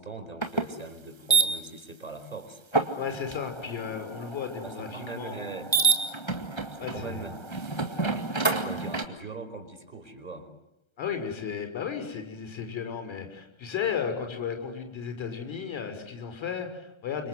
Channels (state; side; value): late; right; 1.3 ms